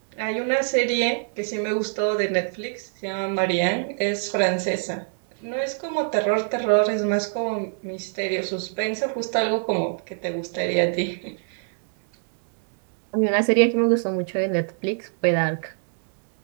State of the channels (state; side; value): silent; left; 62 dB below the other